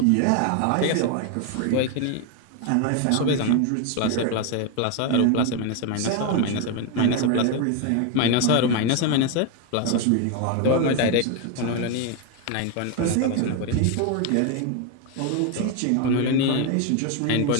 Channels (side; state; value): both; different; correlation 0.01